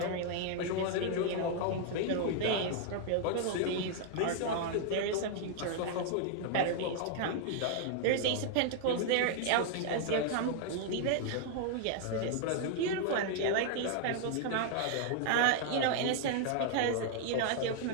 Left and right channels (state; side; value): different; both; correlation 0.00